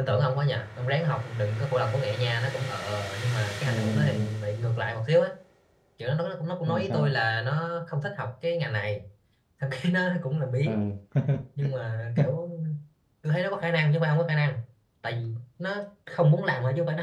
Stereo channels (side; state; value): both; identical; correlation 1.00